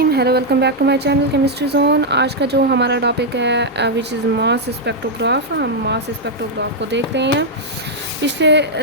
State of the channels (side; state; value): both; normal; correlation -0.02